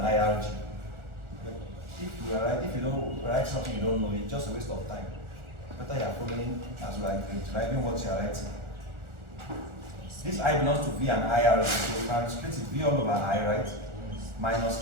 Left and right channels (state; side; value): late; left; 1.4 ms